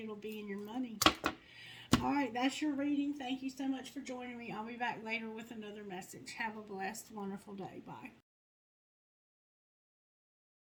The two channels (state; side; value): identical; both; correlation 1.00